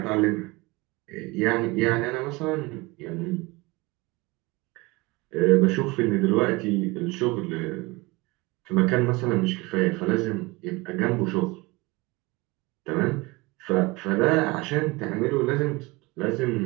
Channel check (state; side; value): quieter; left; 23.8 dB